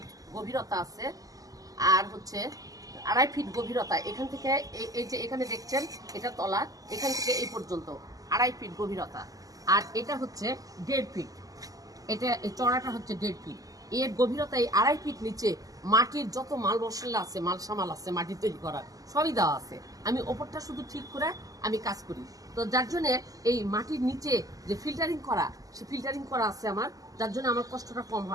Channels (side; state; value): left; late; 0.17 ms